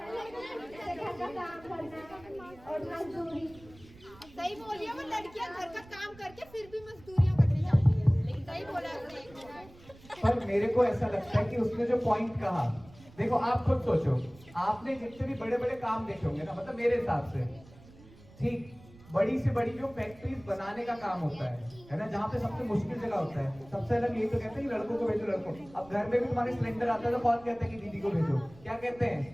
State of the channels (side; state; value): right; noise; rumble, 22 dB below the sound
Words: घर का काम करना और मजदूरी। सही बोल रही है, वो लड़कियां घर का काम करके फिर भी मजदूरियां करने जाती है। लेकिन सही बोला आपने। पर मेरे को ऐसा लगता है कि उसने जो पॉइंट कहा, देखो आप खुद सोचो, आपने जितने भी बड़े काम देखे होंगे ना, मतलब मेरे हिसाब से, ठीक, बड़ी से बड़ी जो फैक्ट्रीज बनाने का काम होता है ना, जहाँ पे सबसे मुश्किल जगह होता है, सबसे अलग यही तो कहते हैं कि लड़कों को भेजो, लड़कों। अब घर में भी तुम्हारे सिलेंडर आता है तो कौन कहता है कि दीदी को भेजो? क्या कहते हैं?